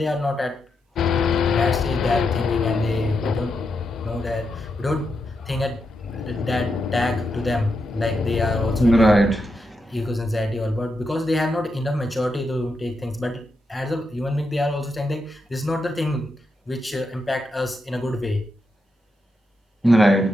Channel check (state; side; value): normal; both; correlation 0.84